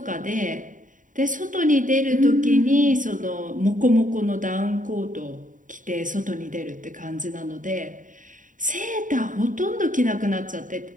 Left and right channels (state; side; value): late; left; 0.38 ms